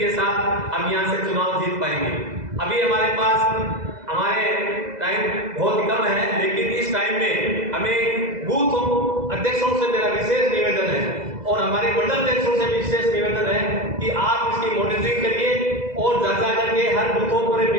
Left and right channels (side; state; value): left; late; 2.0 ms